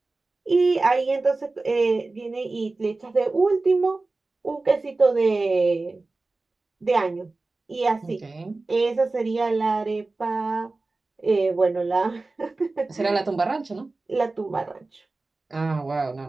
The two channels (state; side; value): quieter; left; 3.4 dB